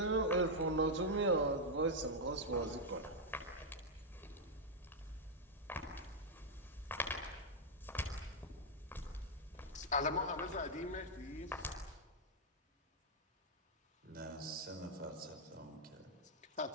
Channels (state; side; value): normal; both; correlation -0.02